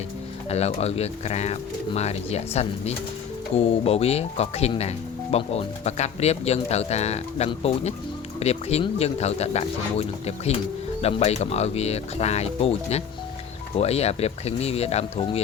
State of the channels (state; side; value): quieter; right; 7.4 dB